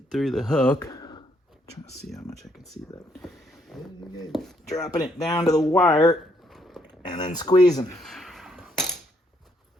through the hook. Trying to see how much I can see that. Dropping it down to the wire and then squeezing.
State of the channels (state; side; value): normal; both; correlation 0.72